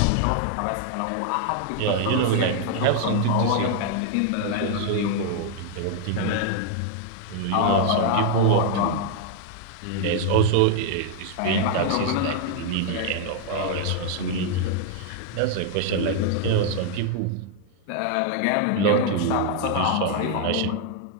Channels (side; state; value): both; different; correlation 0.00